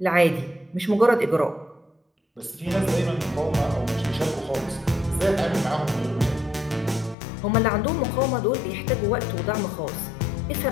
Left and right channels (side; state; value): right; drops out; at 7.2 s